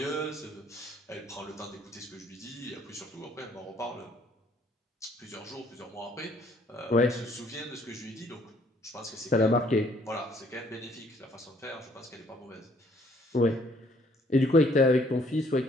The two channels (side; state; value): both; normal; correlation 0.63